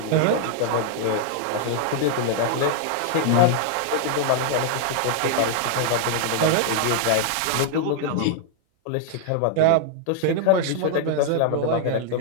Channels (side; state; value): both; different; correlation 0.00